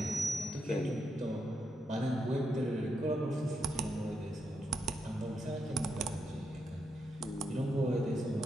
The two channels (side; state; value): both; normal; correlation 0.83